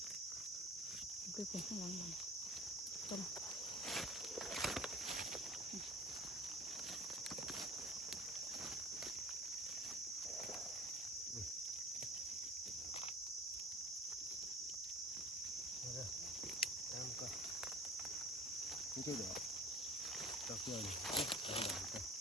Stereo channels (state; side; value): normal; both; correlation 0.41